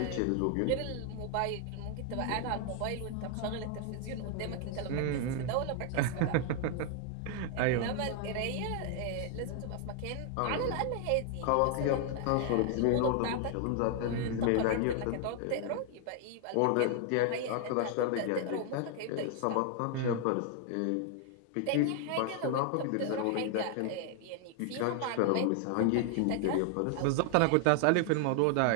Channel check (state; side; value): different; both; correlation 0.00